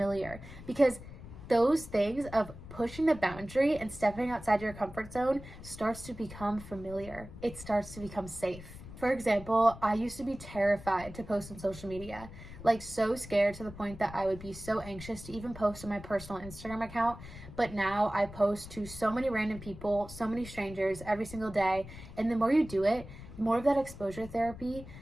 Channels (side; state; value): left; noise; rumble, 14 dB below the sound